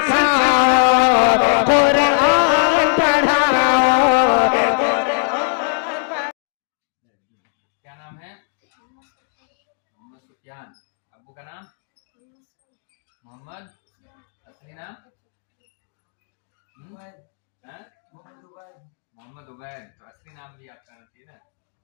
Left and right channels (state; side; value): silent; right; digital silence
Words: قرآن پڑھاؤ. کیا نام ہے؟ محمد سفیان. ابو کا نام محمد. اصلی نام محمد عبید. تو اصلی نام بھی آپ کا ٹھیک ہے.